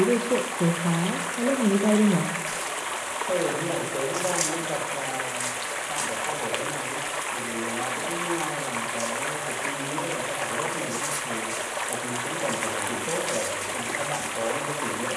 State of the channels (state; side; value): identical; both; correlation 1.00